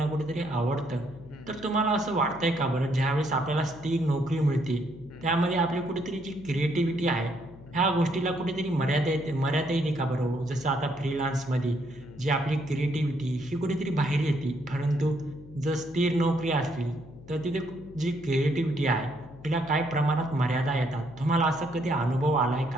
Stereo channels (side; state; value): left; noise; hum, 19 dB below the sound